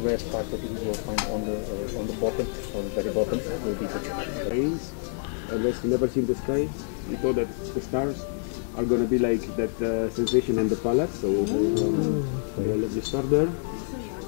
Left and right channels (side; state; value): right; silent; digital silence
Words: red part that you will find on the bottom, on the very bottom, will be the ketchup. Rains, unless you never see the sky, we thought that the stars are gonna be like that sensation on the palate. So we have a lovely star there.